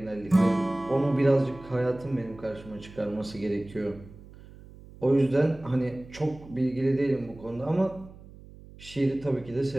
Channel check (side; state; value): right; noise; hum, 19 dB below the sound